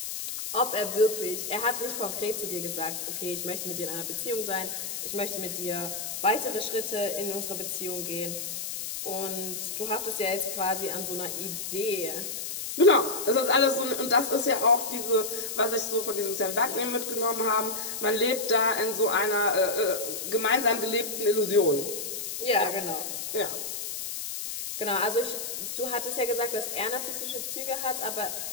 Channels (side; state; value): left; noise; hiss, 5 dB below the sound